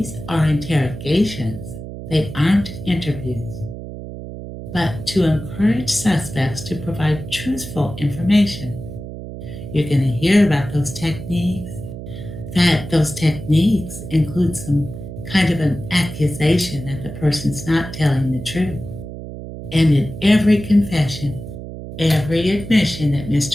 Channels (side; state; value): right; noise; hum, 10 dB below the sound